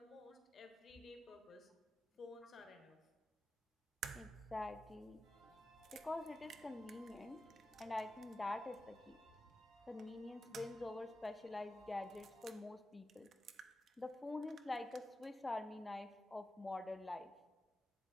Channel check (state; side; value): normal; both; correlation 0.92